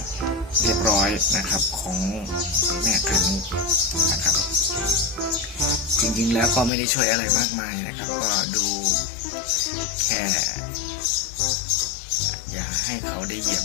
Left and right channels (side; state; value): right; drops out; at 6.7 s